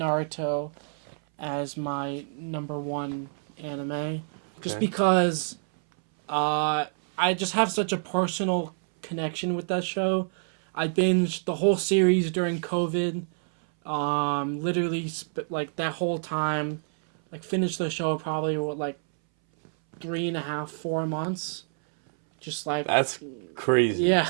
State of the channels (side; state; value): left; silent; 59 dB below the other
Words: as my number 1 anime, just Okay. because I just have such a personal connection with that show. I binged the whole series during COVID. Literally like that whole time, like finished the show probably with like 3.5, 4 months. Just like That's crazy. yeah.